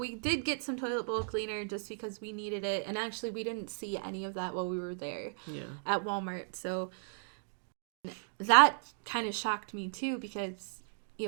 did get some toilet bowl cleaner just because we needed it. And actually, we didn't see any of that while we were there at Walmart. So that kind of shocked me too, because, you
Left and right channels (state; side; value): silent; left; 54 dB below the other